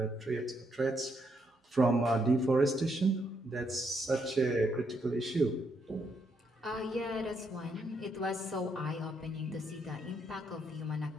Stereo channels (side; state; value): both; normal; correlation 0.76